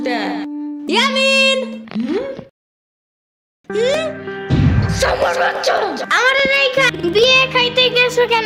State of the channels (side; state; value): both; identical; correlation 1.00